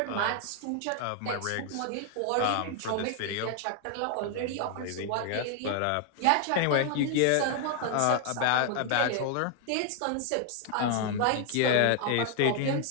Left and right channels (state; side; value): different; both; correlation 0.00